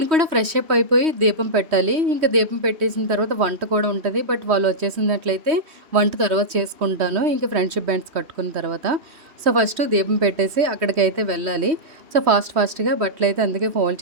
కూడా ఫ్రెష్ అప్ అయిపోయి దీపం పెట్టాలి. ఇంకా దీపం పెట్టేసిన తర్వాత వంట కూడా ఉంటుంది. బట్ వాళ్ళు వచ్చేసినట్లయితే వంట తర్వాత చేసుకుంటాను, ఇంకా ఫ్రెండ్షిప్ బ్యాండ్స్ కట్టుకున్న తర్వాత. సో ఫస్ట్ దీపం పెట్టేసి అక్కడికైతే వెళ్ళాలి. సో ఫాస్ట్గా బట్టలు అయితే అందుకే ఫోల్డ్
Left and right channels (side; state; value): left; late; 3.2 ms